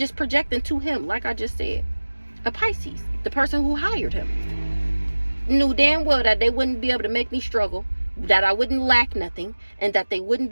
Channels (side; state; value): both; inverted; correlation -1.00